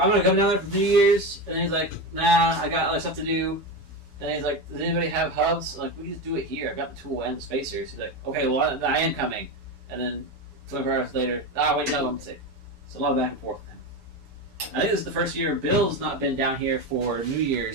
gonna come down there for New Year's, and then he's like, nah, I got other stuff to do. And then he's like, does anybody have hubs? I'm like, we can just do it here. I've got the tool and the spacers. He's like, okay, well, I am coming. And then 24 hours later, wait, no, I'm sick. So a lot of back and forth with him. I think this is the first year Bill's not been down here for New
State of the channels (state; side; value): normal; both; correlation 0.19